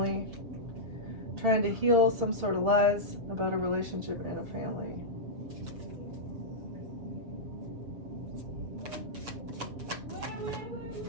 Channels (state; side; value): late; left; 7.2 ms